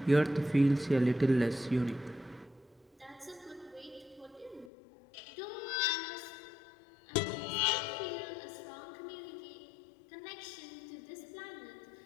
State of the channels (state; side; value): drops out; right; at 4.7 s